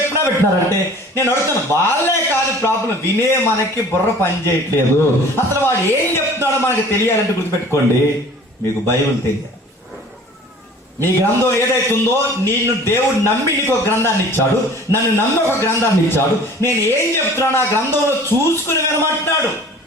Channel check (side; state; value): both; normal; correlation 0.46